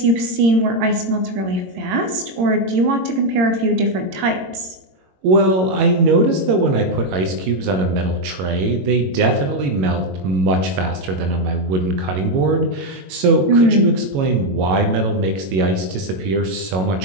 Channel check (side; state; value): left; late; 22 ms